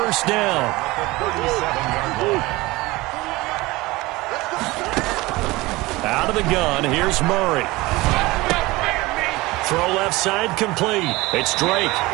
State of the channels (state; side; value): quieter; left; 20.8 dB